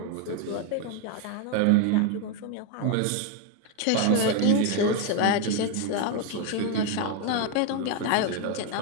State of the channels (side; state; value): both; different; correlation 0.02